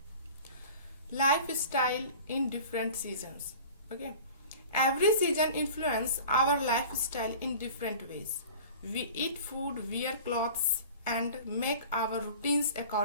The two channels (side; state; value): both; inverted; correlation -0.41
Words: Lifestyle in different seasons. Okay, every season influence our lifestyle in different ways. We eat food, wear clothes and make our routines